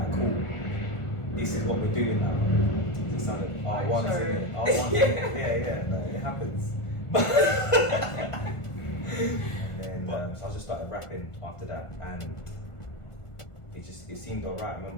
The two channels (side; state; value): right; late; 1.5 ms